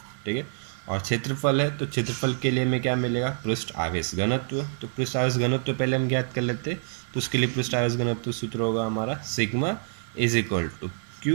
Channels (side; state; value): left; silent; 60 dB below the other